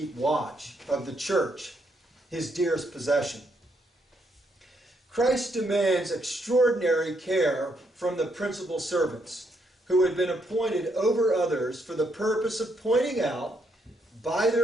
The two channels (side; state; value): both; normal; correlation 0.75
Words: watch of the church, his dearest possession. Christ demands extraordinary care from the principal servants who had been appointed over others for the purpose of pointing out, by